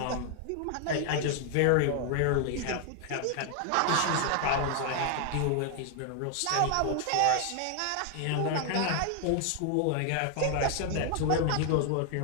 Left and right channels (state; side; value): different; both; correlation 0.00